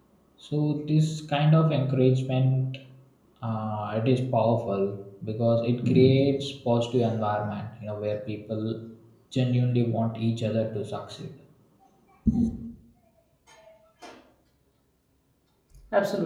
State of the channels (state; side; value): identical; both; correlation 1.00